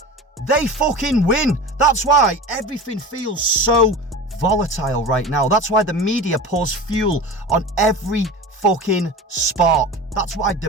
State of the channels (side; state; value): both; normal; correlation 0.32